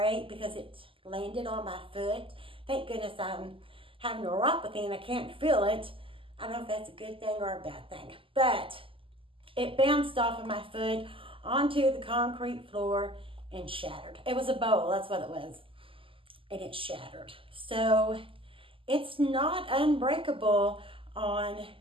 because it landed on my foot. Thank goodness I'm having neuropathy and I can't feel it. I don't know if that's a good thing or a bad thing, but it bounced off of my foot onto the concrete floor and shattered. It was a bowl, that's what it was. And it shattered. So it's not unbreakable on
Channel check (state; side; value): late; left; 0.25 ms